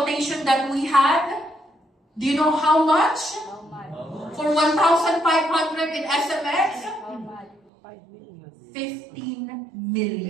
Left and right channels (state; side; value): drops out; left; at 7.6 s